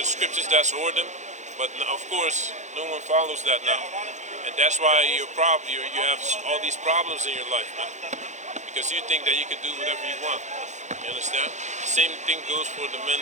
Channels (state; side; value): late; left; 0.34 ms